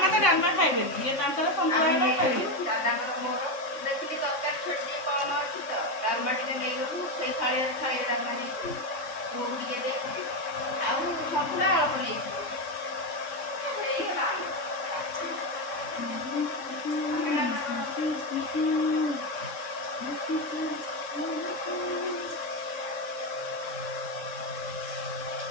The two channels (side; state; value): right; late; 3.6 ms